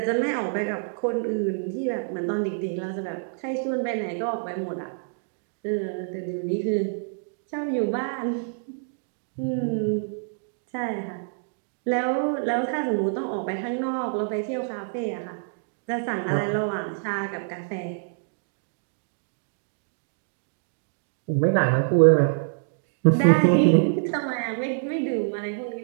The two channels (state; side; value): silent; left; digital silence